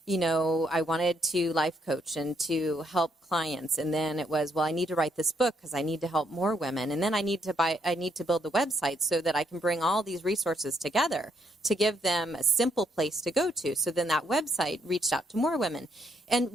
wanted to life coach and to help clients, and then it was, I need to write this book because I need to help more women, and then I need to build the website so that I can bring all these resources together to give them a simple place to go to. So then that website reached out to more women. And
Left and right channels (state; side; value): normal; both; correlation 0.73